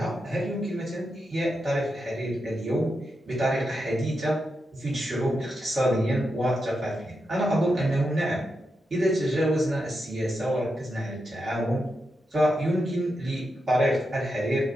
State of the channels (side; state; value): both; normal; correlation 0.86